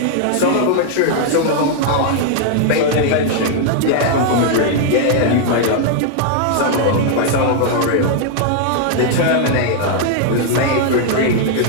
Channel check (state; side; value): different; both; correlation 0.00